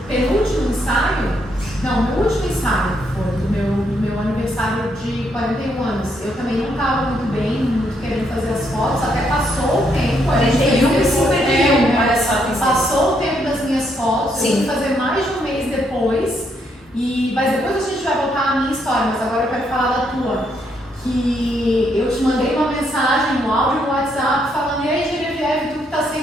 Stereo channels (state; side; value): normal; both; correlation 0.75